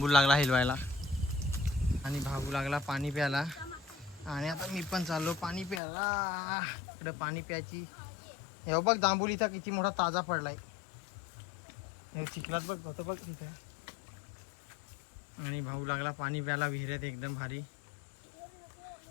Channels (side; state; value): right; drops out; at 5.8 s